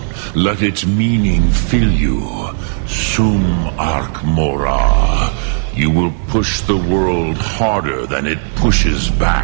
Let its meaning fill you. Sum Ark Mora. You will push the world harder than it pushes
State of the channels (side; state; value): left; silent; 70 dB below the other